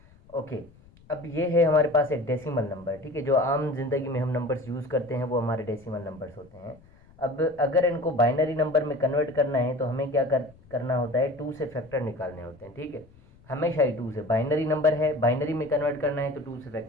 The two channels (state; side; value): noise; left; rumble, 26 dB below the sound